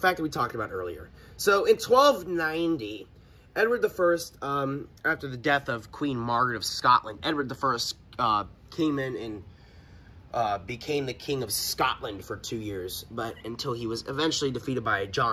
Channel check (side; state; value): both; identical; correlation 1.00